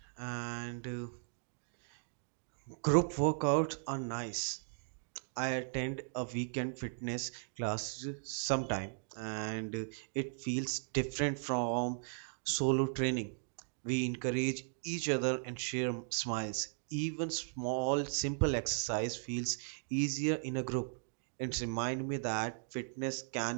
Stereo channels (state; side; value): silent; left; digital silence